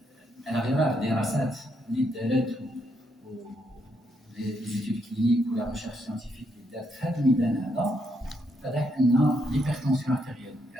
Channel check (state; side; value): normal; both; correlation 0.77